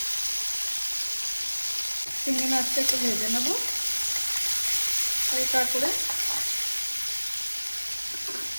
চিংড়ি মাছটা একটু ভেজে নেব হালকা করে।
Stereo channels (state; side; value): inverted; both; correlation -1.00